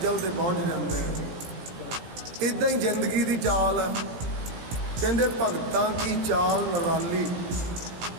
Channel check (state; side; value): late; left; 17 ms